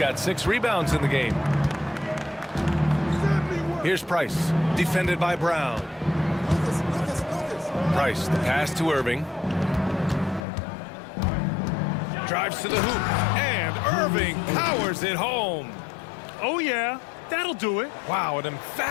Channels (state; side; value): drops out; right; at 10.5 s